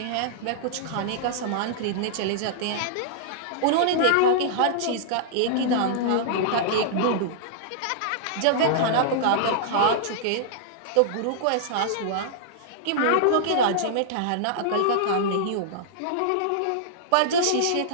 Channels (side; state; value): both; different; correlation -0.02